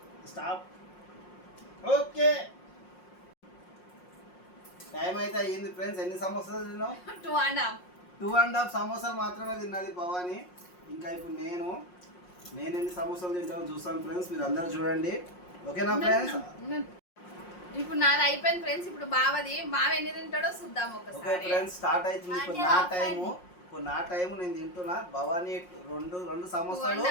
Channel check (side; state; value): right; late; 5.6 ms